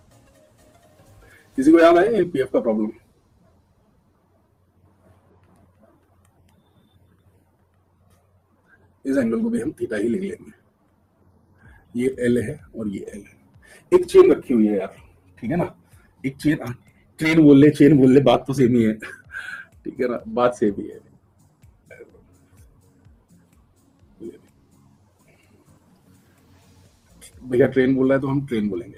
किसी को याद है पीएफ का प्रॉब्लम? इस एंगल को भी हम थीटा ही ले लेंगे, ये एल है और ये एल है, एक चेन रखी हुई है यार, ठीक है ना, एक चेन, ट्रेन बोल ले चेन बोल ले, बात तो सेम ही है, ठीक है ना, बात सेम ही है। भैया ट्रेन बोल रहा है तो हम ट्रेन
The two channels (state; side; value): identical; both; correlation 1.00